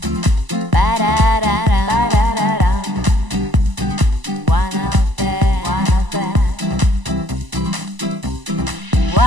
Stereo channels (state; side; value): late; left; 1.0 ms